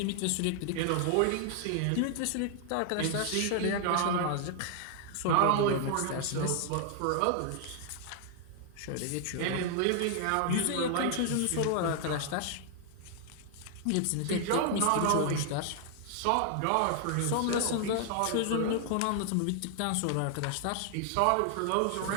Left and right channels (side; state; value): both; different; correlation 0.00